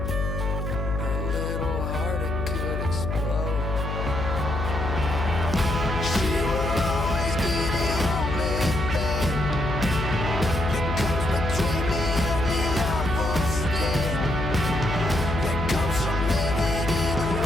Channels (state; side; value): noise; left; hum, 3 dB below the sound